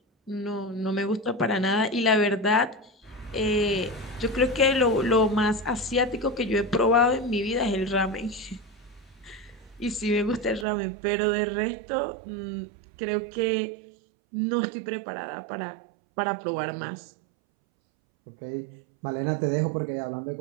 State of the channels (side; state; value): left; drops out; at 10.7 s